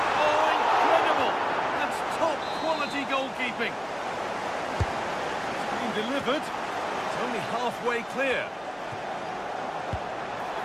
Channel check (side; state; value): both; identical; correlation 1.00